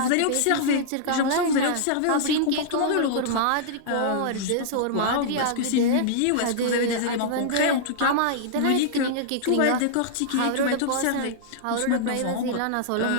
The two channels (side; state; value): both; different; correlation -0.02